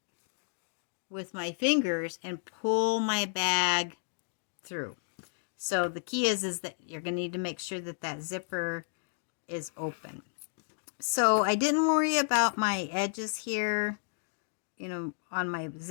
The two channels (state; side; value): silent; right; digital silence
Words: with my fingers and pull my bag through. So the key is that you're going to need to make sure that that zipper is open. So I didn't worry about my edges here, you know, on my